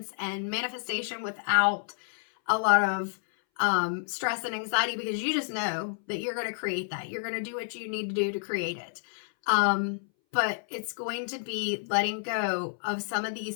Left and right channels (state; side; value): silent; right; 58 dB below the other